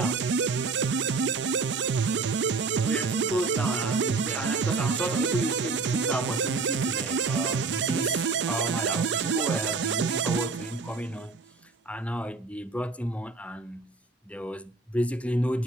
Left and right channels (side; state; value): left; quieter; 4.1 dB